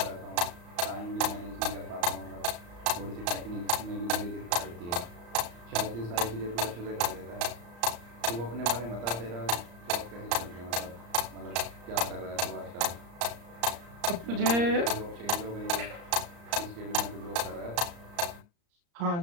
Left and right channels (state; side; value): late; left; 34 ms